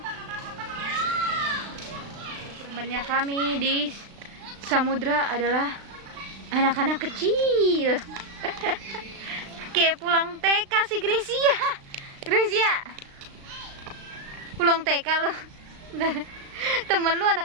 Temannya kami di samudra adalah anak-anak kecil. Kayak pulang TK si Gracia. Gracia, pulang TK lo. Temen lu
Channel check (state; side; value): late; left; 36 ms